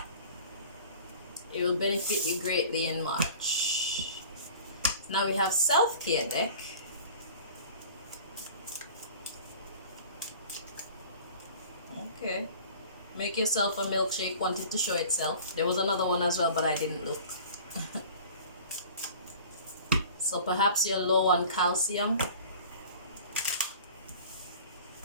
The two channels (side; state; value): both; inverted; correlation -0.43